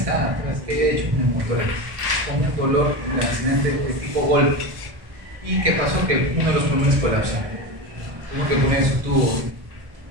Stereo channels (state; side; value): late; left; 1.6 ms